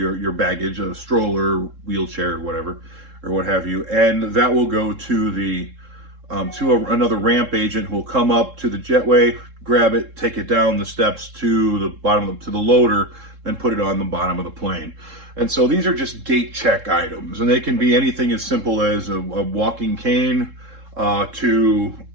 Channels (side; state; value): left; late; 3.7 ms